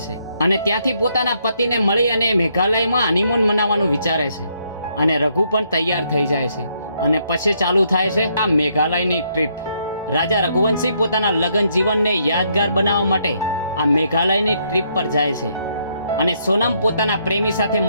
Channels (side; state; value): both; inverted; correlation -0.73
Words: છે અને ત્યાંથી પોતાના પતિને મળી અને મેઘાલયમાં હનીમૂન મનાવવાનું વિચારે છે. અને રઘુ પણ તૈયાર થઈ જાય છે અને પછી ચાલુ થાય છે આ મેઘાલયની ટ્રીપ. રાજા રઘુવંશી પોતાના લગ્ન જીવનને યાદગાર બનાવવા માટે આ મેઘાલયની ટ્રીપ પર જાય છે અને સોનમ પોતાના પ્રેમી સાથે